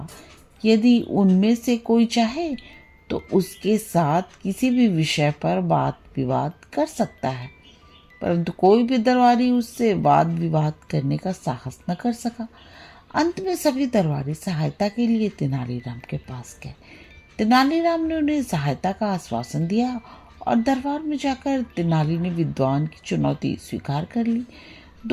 कि यदि उनमें से कोई चाहे तो उसके साथ किसी भी विषय पर वाद विवाद कर सकता है, परंतु कोई भी दरबारी उससे वाद विवाद करने का साहस न कर सका। अंत में सभी दरबारी सहायता के लिए तेनालीराम के पास गए। तेनालीराम ने उन्हें सहायता का आश्वासन दिया और दरबार में जाकर तेनाली ने विद्वान की चुनौती स्वीकार कर ली।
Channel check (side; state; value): both; identical; correlation 1.00